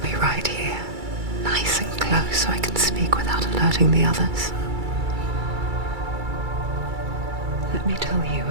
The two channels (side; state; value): left; late; 2.3 ms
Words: right here, nice and close so I can speak without alerting the others. Let me tell you